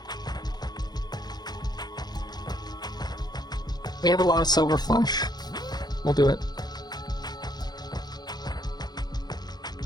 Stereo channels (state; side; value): late; right; 0.20 ms